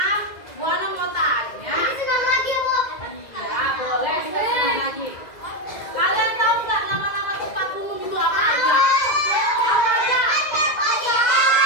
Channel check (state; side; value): late; right; 2.0 ms